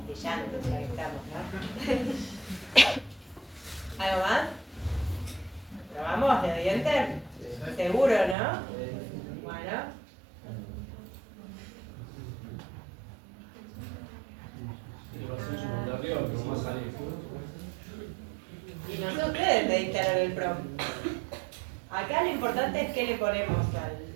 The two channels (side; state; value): left; drops out; at 8.3 s